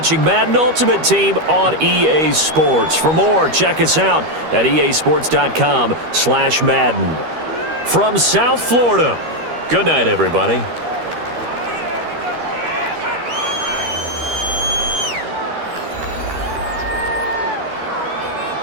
Madden Ultimate Team on EA Sports. For more, check us out at easports.com/Madden. From South Florida, good night, everybody.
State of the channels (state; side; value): late; left; 13 ms